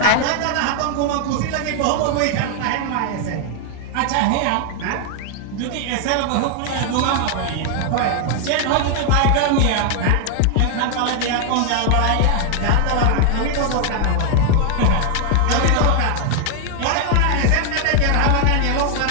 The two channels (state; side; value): different; both; correlation 0.00